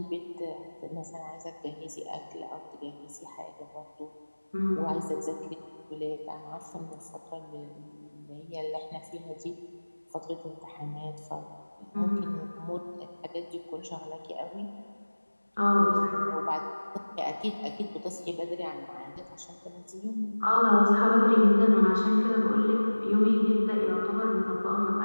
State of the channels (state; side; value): inverted; both; correlation -1.00